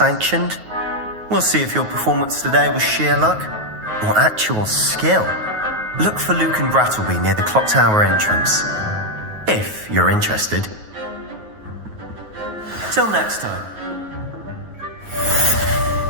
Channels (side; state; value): left; late; 9.4 ms